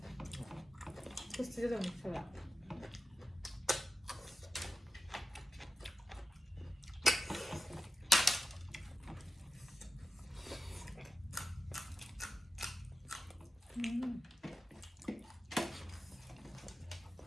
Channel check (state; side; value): normal; both; correlation 0.92